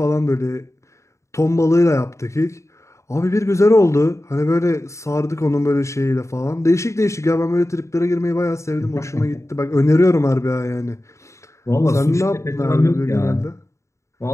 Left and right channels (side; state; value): right; late; 0.14 ms